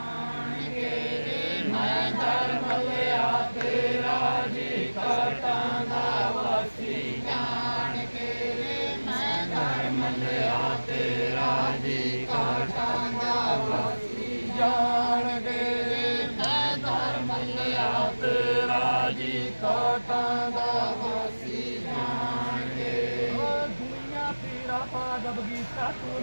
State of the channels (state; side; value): inverted; both; correlation -1.00